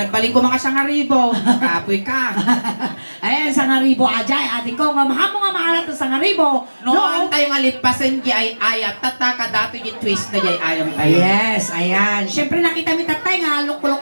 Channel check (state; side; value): inverted; both; correlation -1.00